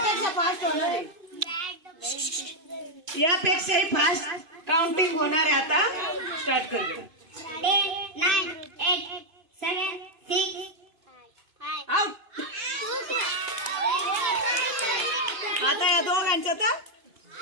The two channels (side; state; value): left; late; 2.6 ms